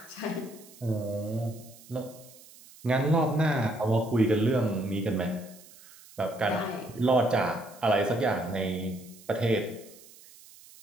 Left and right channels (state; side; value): noise; right; hiss, 22 dB below the sound